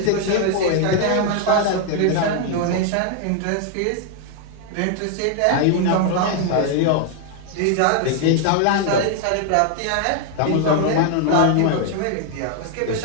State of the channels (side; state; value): both; different; correlation 0.00